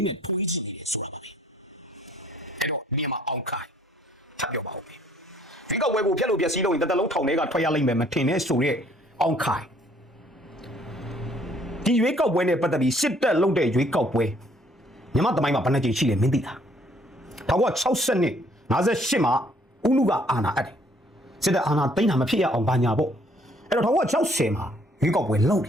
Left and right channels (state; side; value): normal; both; correlation 0.62